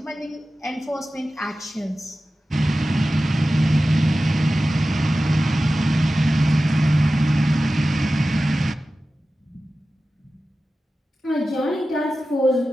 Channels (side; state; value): both; normal; correlation 0.95